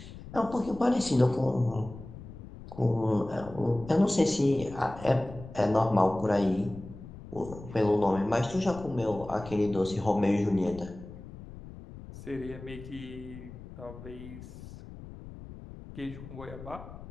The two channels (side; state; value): left; noise; rumble, 14 dB below the sound